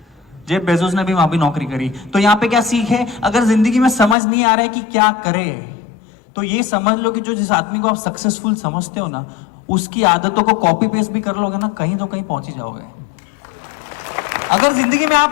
जेफ बेजोस ने भी वहां भी नौकरी करी। तो यहाँ पे क्या सीख है? अगर जिंदगी में समझ नहीं आ रहा है कि क्या करे, तो ये समझ लो कि जो जिस आदमी को आप सक्सेसफुल समझते हो ना, उसकी आदतों को कॉपी पेस्ट भी कर लोगे ना, कहीं तो कहीं पहुंच ही जाओगे। अगर जिंदगी में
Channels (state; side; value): drops out; right; at 4.2 s